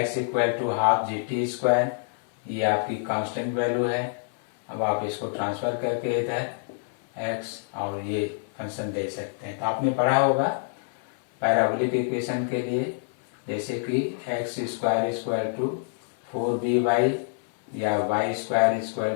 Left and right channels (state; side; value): silent; right; 59 dB below the other